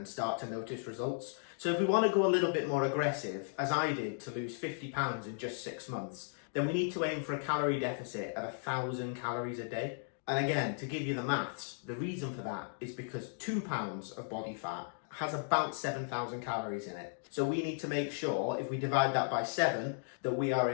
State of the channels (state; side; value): silent; right; digital silence